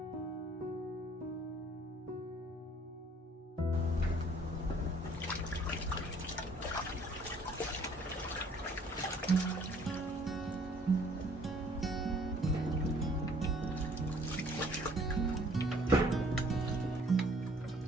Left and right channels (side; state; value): both; normal; correlation 0.58